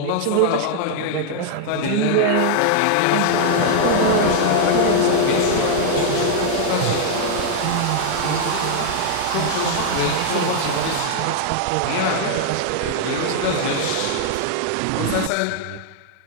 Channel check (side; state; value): both; different; correlation 0.00